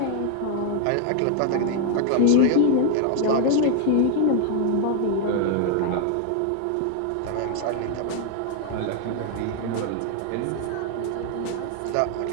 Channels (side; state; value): both; different; correlation 0.00